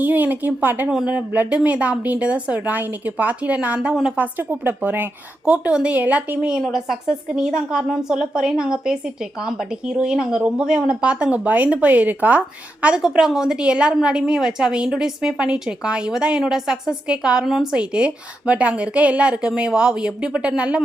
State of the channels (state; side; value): normal; both; correlation 0.86